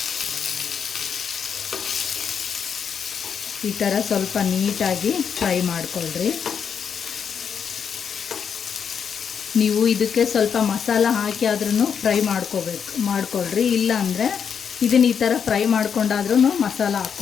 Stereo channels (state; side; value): quieter; right; 7.1 dB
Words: ಈ ಥರ ಸ್ವಲ್ಪ ನೀಟಾಗಿ ಫ್ರೈ ಮಾಡ್ಕೊಳ್ರಿ. ನೀವು ಇದಕ್ಕೆ ಸ್ವಲ್ಪ ಮಸಾಲ ಹಾಕಿ ಆದ್ರೂ ಫ್ರೈ ಮಾಡ್ಕೊಳ್ರಿ. ಇಲ್ಲ ಅಂದರೆ ಇದನ್ನು ಈ ಥರ ಫ್ರೈ ಮಾಡ್ಕೊಂಡಾದ್ರೂ ಮಸಾಲ